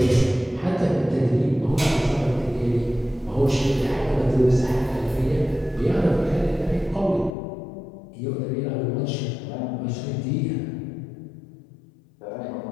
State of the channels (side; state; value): right; drops out; at 7.4 s